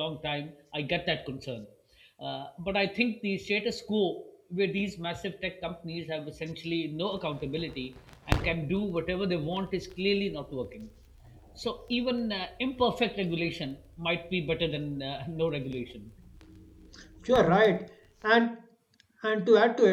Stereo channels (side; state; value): both; identical; correlation 1.00